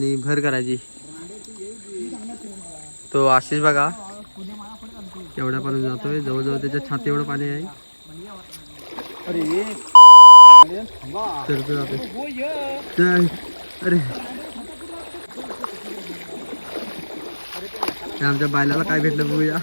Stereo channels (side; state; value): both; inverted; correlation -1.00